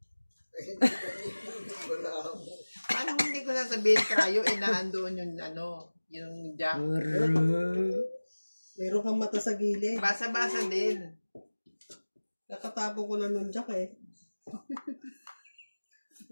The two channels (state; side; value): inverted; both; correlation -1.00